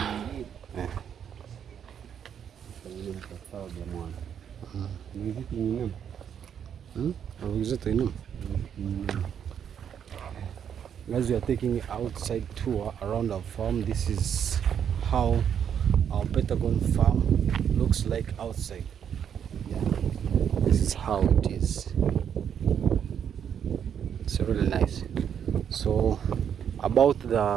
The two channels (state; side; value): quieter; left; 8.4 dB